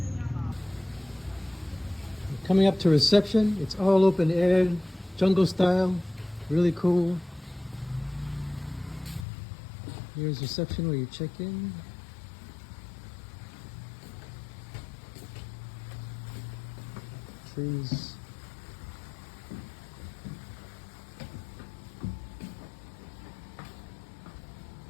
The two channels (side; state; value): right; drops out; at 9.2 s